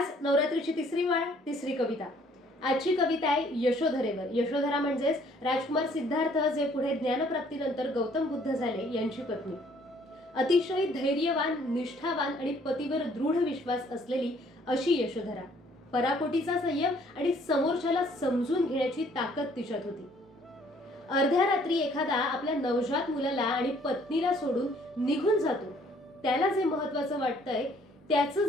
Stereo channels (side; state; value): both; normal; correlation 0.61